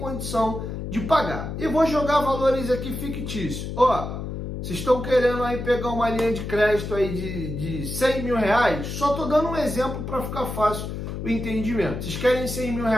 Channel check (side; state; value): left; noise; hum, 6 dB below the sound